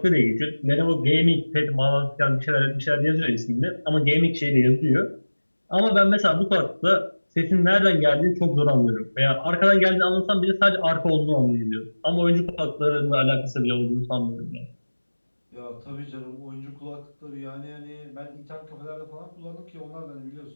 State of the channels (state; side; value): inverted; both; correlation -1.00